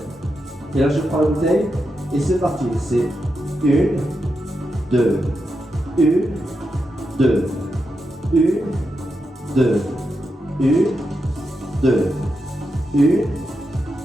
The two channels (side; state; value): both; normal; correlation 0.86